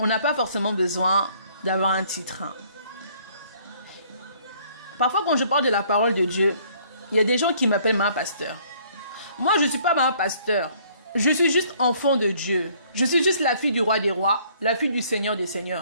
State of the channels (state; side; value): inverted; both; correlation -0.61